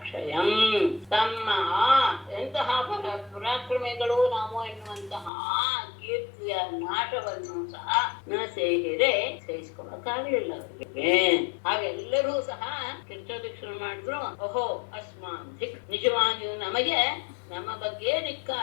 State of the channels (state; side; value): drops out; right; at 5.3 s